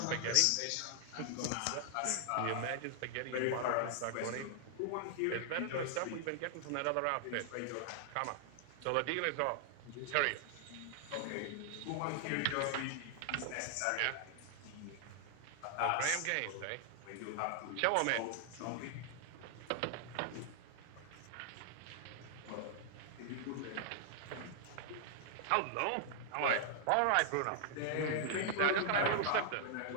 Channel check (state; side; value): different; both; correlation -0.01